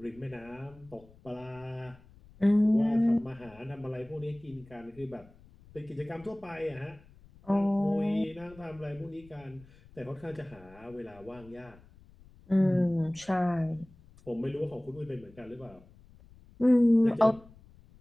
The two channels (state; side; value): noise; left; rumble, 24 dB below the sound